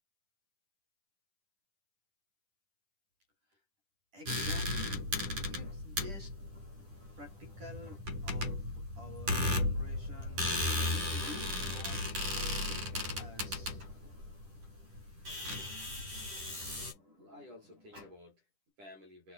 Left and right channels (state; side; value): late; left; 10 ms